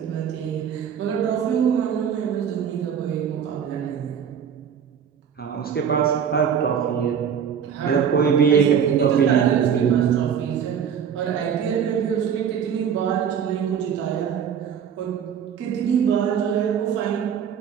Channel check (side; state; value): left; quieter; 7.9 dB